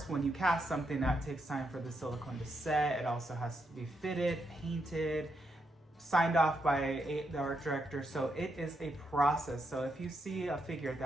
when you cast something, that takes time for the silicone to set. It also has to be fitted, painted, signed off by the art director. So it is a process. So if you see a figure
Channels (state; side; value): normal; both; correlation 0.81